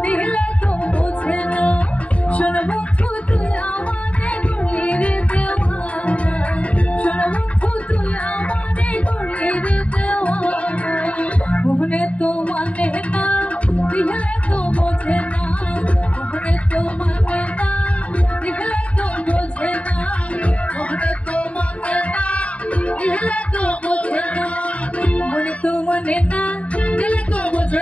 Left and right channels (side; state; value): right; late; 0.065 ms